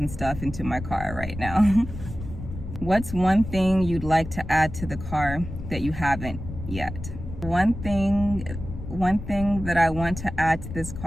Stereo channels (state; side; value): noise; left; rumble, 10 dB below the sound